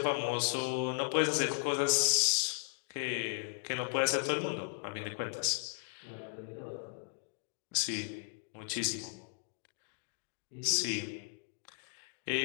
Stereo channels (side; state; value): right; silent; digital silence